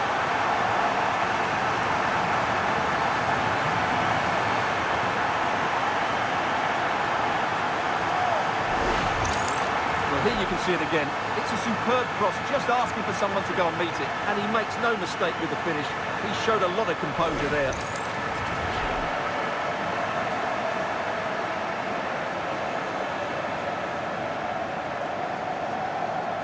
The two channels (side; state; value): both; identical; correlation 1.00